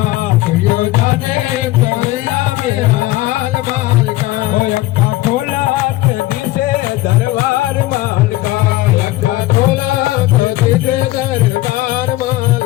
तुझो जाने कि हुंदा मेरा हाल माल का। ओ अक्का खोला के दिसे दरबार माल का, अक्का खोला के दिसे दरबार माल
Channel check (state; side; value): quieter; right; 17.5 dB